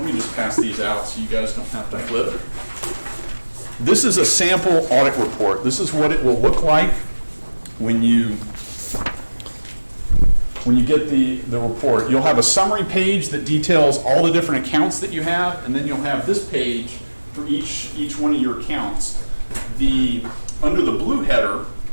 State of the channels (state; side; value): inverted; both; correlation -1.00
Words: just pass these out so you guys don't have to flip. This is a sample audit report. This is what it will look like when you get the report. You'll have a summary page that details all the different accounts that you have, and then you'll have this page for each one of your accounts. Under the blue header,